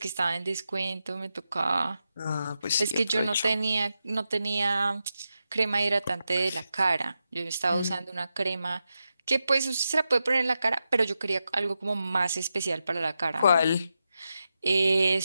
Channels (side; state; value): both; inverted; correlation -0.88